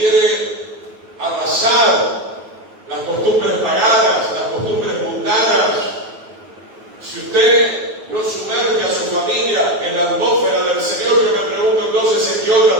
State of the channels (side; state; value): left; late; 9.3 ms